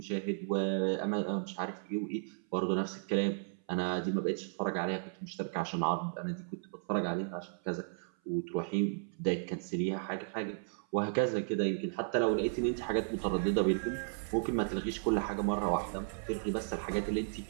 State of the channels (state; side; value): silent; left; 55 dB below the other